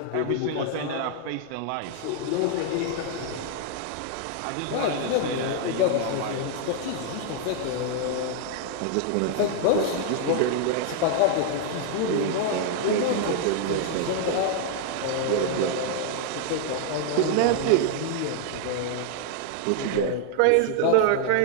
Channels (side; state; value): both; different; correlation 0.00